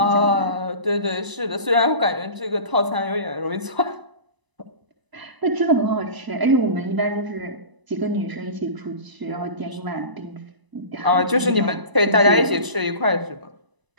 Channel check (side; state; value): left; late; 1.0 ms